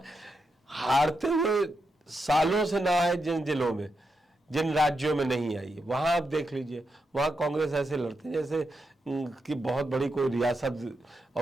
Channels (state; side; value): normal; both; correlation 0.85